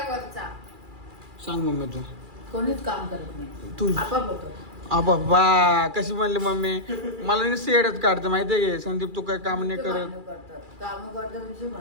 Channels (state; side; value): late; left; 2.4 ms